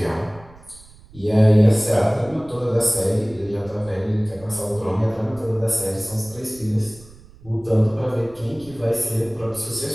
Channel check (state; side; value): noise; right; rumble, 23 dB below the sound